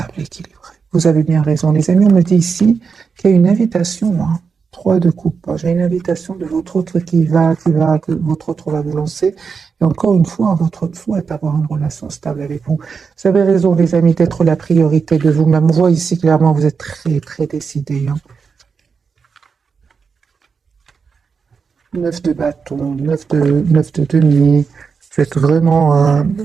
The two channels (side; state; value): left; quieter; 5.6 dB